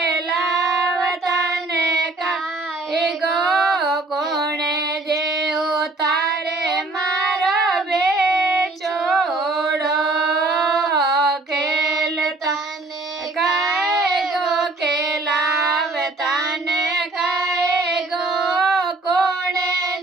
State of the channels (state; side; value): quieter; left; 3.2 dB